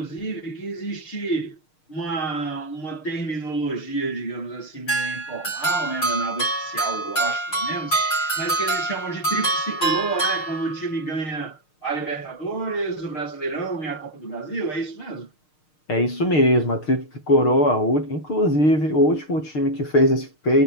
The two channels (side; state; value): right; late; 6.5 ms